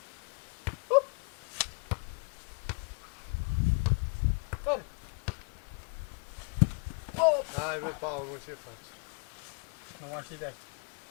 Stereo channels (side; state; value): right; quieter; 37.2 dB